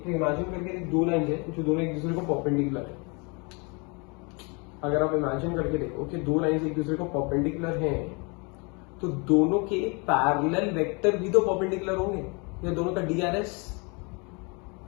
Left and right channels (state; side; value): quieter; right; 31.1 dB